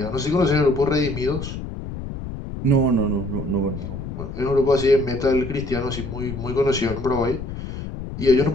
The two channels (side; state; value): left; noise; rumble, 8 dB below the sound